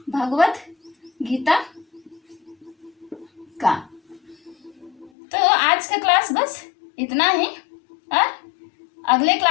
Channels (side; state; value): right; drops out; at 5.1 s